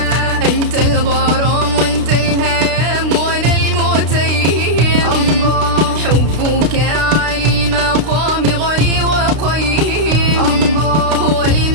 أنت الغرام وأنت الهيام وأنا المتيم، الله حبك عالي المقام غني وقيم، الله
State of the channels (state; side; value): late; left; 32 ms